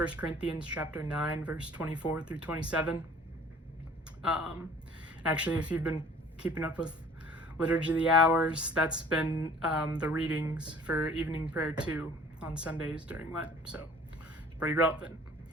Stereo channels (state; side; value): normal; both; correlation 0.50